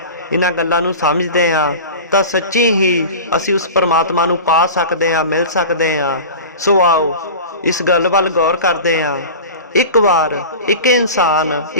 ਇਹਨਾਂ ਗੱਲਾਂ ਨੂੰ ਸਮਝਦੇ ਆ ਤਾਂ ਸੱਚੀ ਹੀ ਅਸੀਂ ਉਸ ਪਰਮਾਤਮਾ ਨੂੰ ਪਾ ਸਕਦੇ ਹਾਂ, ਮਿਲ ਸਕਦੇ ਹਾਂ। ਸੋ ਆਓ ਇਸ ਗੱਲ ਵੱਲ ਗੌਰ ਕਰਦੇ ਹਾਂ। ਇੱਕ ਵਾਰ ਇੱਕ ਇਨਸਾਨ,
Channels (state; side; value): inverted; both; correlation -0.33